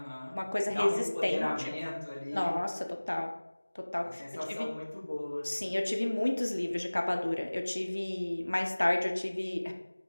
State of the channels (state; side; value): inverted; both; correlation -1.00